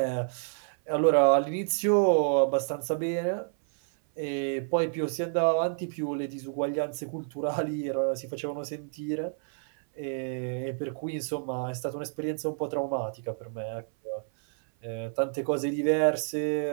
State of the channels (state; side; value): silent; left; 56 dB below the other